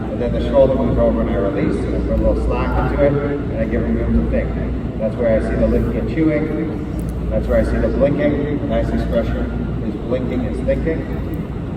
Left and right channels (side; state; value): both; identical; correlation 1.00